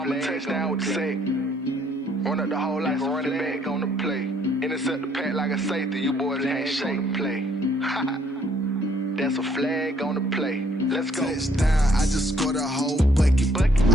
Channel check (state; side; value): normal; both; correlation 0.65